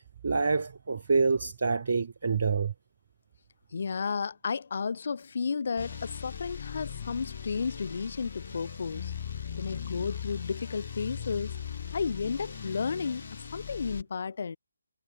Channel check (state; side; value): inverted; both; correlation -0.82